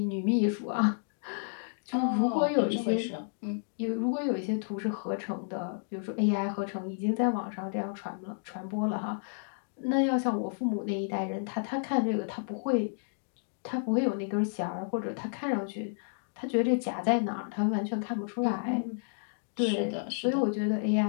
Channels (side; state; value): right; silent; digital silence